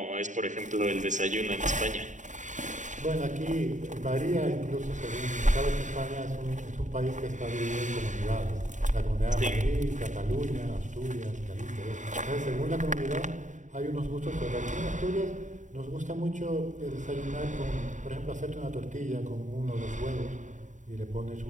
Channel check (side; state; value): left; late; 0.36 ms